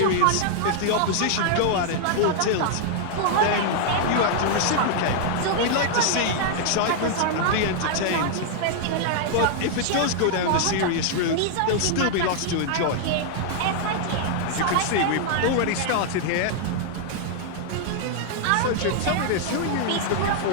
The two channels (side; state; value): both; different; correlation -0.01